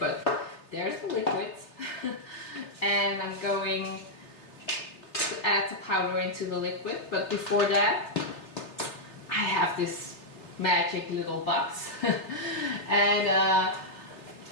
there's the liquid. And I'm going to add the powder into the liquid, but before that I have this magic little box and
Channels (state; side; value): late; right; 3.4 ms